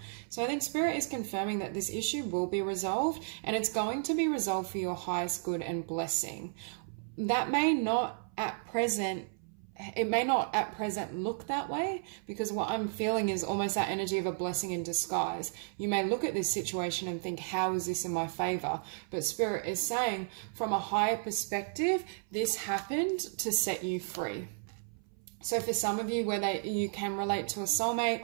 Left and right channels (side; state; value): left; silent; 56 dB below the other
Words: So I think Spirit is confirming that this issue will be resolved, and it's going to be resolved for your highest good and blessing. That may not at present look that way, because what I'm feeling is almost that energy of a blessing in disguise. You may look at this situation and think, how is this in my favor? But Spirit is saying from a higher perspective, this happened to set you free. So for some of you, whether you can relate to a